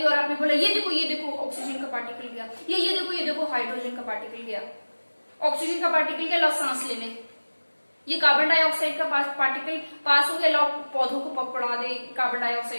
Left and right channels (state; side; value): inverted; both; correlation -1.00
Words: और आपने बोला ये देखो ऑक्सीजन का पार्टिकल गया, ये देखो हाइड्रोजन का पार्टिकल गया। ऑक्सीजन का पार्टिकल गया, लो सांस लेने। ये कार्बन डाइऑक्साइड का पार्टिकल पास हो गया, लो पौधों को पकड़ा दे कार्बन